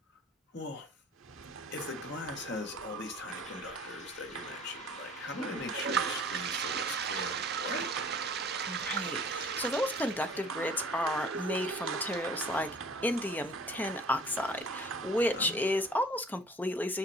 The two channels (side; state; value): both; normal; correlation 0.49